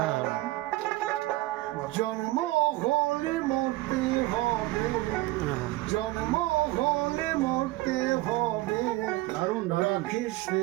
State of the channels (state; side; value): quieter; left; 18.9 dB